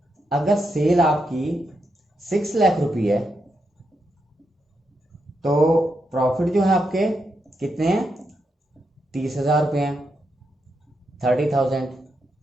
अगर सेल आपकी 6 लाख रुपए है तो प्रॉफिट जो है आपके कितने हैं, 30,000 रुपये हैं, 30,000।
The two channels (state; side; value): normal; both; correlation 0.83